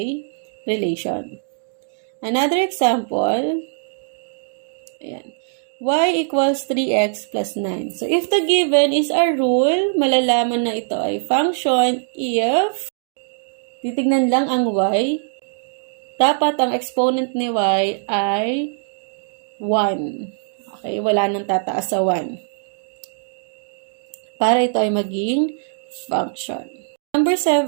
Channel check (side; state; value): left; silent; digital silence